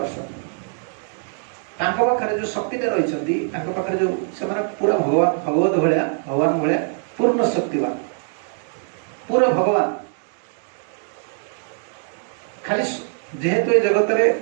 पाखे जो शक्ति रही पाखे जो से पूरा भगवान भगवत भाया भगवान भाया पूर्ण शक्तिवान पूरा भगवान खाली जेहेतु ये जगत रे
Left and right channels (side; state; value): left; silent; 57 dB below the other